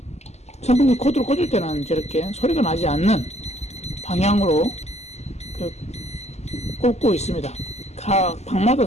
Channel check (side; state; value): right; late; 0.32 ms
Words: 선풍기 코드를 꽂을 때는 저렇게 소리가 나지 않는 방향으로 꽂고 있습니다. 각 방마다